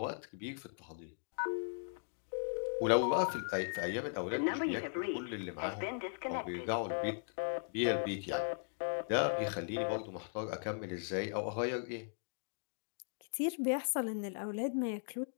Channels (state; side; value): silent; right; digital silence